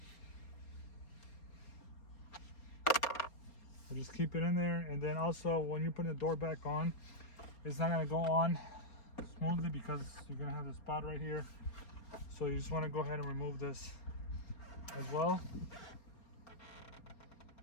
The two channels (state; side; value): late; right; 4.3 ms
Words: So just keep it in there, and then also when you put the door back on, it's not gonna go on smoothly because you're gonna have the spot right here. So you just want to go ahead and remove this as well.